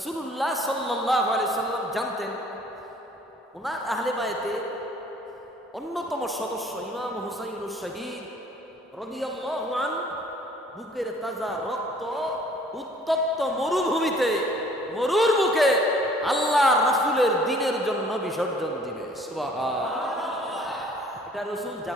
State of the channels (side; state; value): both; normal; correlation 0.55